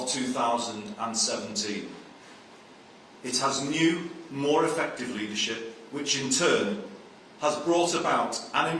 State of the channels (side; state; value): both; identical; correlation 1.00